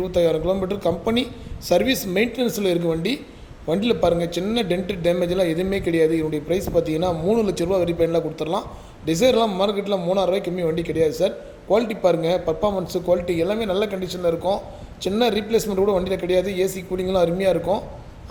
கிலோமீட்டர் கம்பெனி சர்வீஸ் மெயின்டெனன்ஸில் இருக்குது வண்டி. வண்டியில் பாருங்கள், சின்ன டென்ட்டு டேமேஜெலாம் எதுவுமே கிடையாது. இதனுடைய ப்ரைஸ் பார்த்தீங்கன்னா 3 லட்ச ரூபா வெரிஃபைன்லாம் கொடுத்துடலாம். டிசைர்லாம் மார்க்கெட்டில் 3000 ரூபாய்க்கு கம்மி வண்டி கிடையாது சார். குவாலிட்டி பாருங்கள், பர்ஃபார்மன்ஸு குவாலிட்டி எல்லாமே நல்ல கண்டிஷனில் இருக்கும். சின்ன ரீப்ளேஸ்மெண்ட் கூட வண்டியில் கிடையாது. ஏசி கூலிங்லாம் அருமையாக இருக்கும்.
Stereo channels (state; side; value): identical; both; correlation 1.00